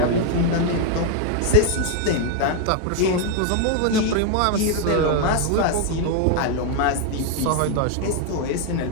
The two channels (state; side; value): different; both; correlation 0.00